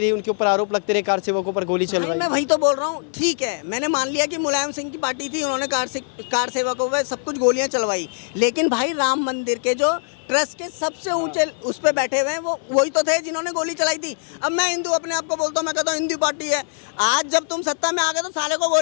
उनके ऊपर आरोप लगते रहे, कार सेवकों पर गोली चलवाई। मैं वही तो बोल रहा हूँ, ठीक है, मैंने मान लिया कि मुलायम सिंह की पार्टी थी, उन्होंने कार सेवकों पर सब कुछ गोलियां चलवाई, लेकिन भाई राम मंदिर के जो ट्रस्ट के सबसे ऊंचे उस पर बैठे हुए हैं वो वही तो थे जिन्होंने गोली चलाई थी। अब मैं हिंदू अपने आप को बोलता हूँ, मैं कहता हूँ हिंदू पार्टी है। आज जब तुम सत्ता में आ गए तो साले को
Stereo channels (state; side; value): silent; right; 64 dB below the other